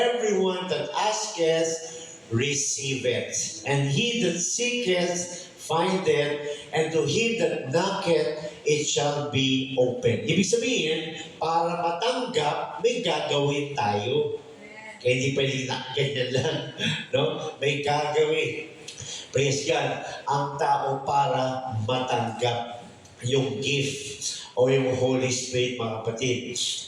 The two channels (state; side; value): identical; both; correlation 1.00